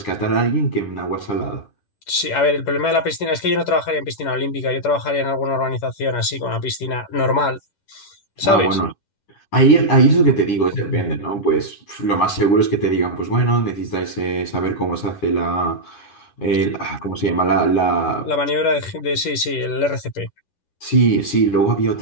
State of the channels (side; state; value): right; late; 10 ms